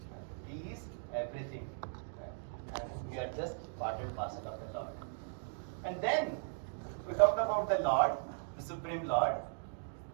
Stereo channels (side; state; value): left; silent; digital silence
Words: He is everything. And we are just part and parcel of the Lord. And then we talked about the Lord, the Supreme Lord.